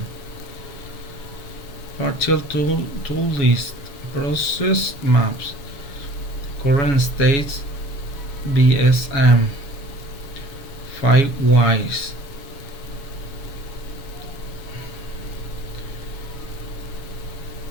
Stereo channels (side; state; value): right; late; 7.2 ms